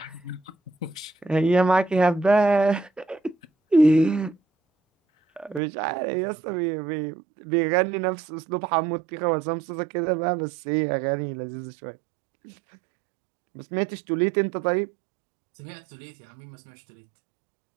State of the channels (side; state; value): left; drops out; at 5.6 s